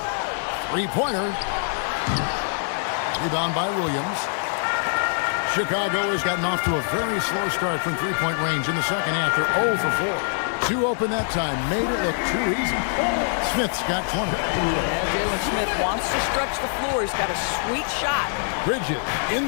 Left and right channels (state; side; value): silent; right; digital silence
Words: 3-pointer. Rebound by Williams. Chicago has gotten off to a very slow start from 3-point range in the second half. They're 0 for 4. 2 open that time. Made it look too easy. Smith's got 20. Yeah, Jalen Smith wants to stretch the floor. He's got a sweet shot. Bridges